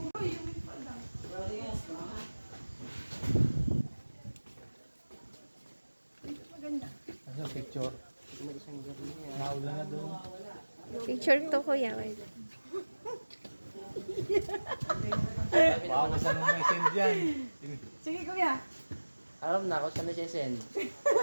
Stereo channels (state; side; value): inverted; both; correlation -1.00